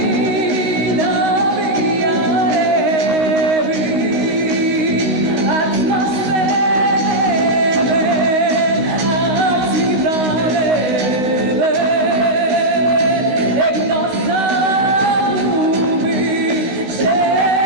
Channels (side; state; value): left; late; 16 ms